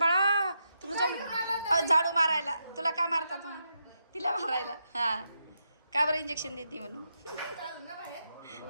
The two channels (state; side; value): inverted; both; correlation -0.84